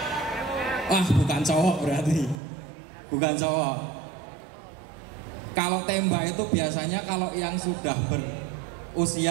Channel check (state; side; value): drops out; left; at 2.4 s